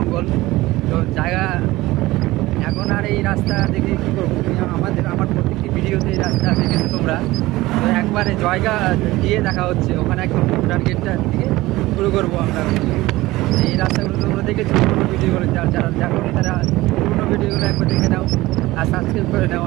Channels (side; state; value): left; quieter; 18.6 dB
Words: তো জায়গা এখন আর এই রাস্তা দেখে কী করবো, আমার প্রত্যেকটি ভিডিওতে এই রাস্তা দেখেছো তোমরা। তো একবারে জায়গা দিয়ে দেখা হচ্ছে, ওখানে একদম ভুটান গেটটা থেকে শুরু করবো আমরা। এই রাস্তাগুলো তোমরা দেখেছো পুরোনো ভিডিওগুলো, যারা দেখো তারা পুরোনো ভিডিওগুলো একবার দেখে নাও আর সাবস্ক্রাইব করে নাও।